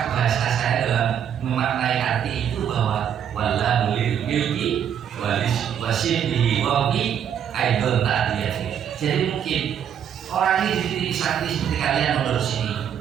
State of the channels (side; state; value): left; quieter; 8.9 dB